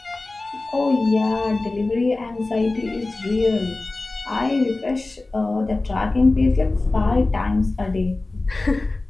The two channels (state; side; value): quieter; right; 3.2 dB